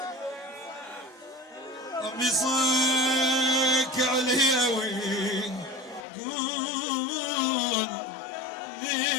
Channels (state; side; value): drops out; right; at 6.1 s